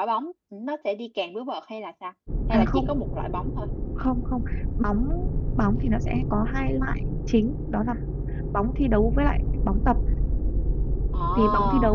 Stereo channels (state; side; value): identical; both; correlation 1.00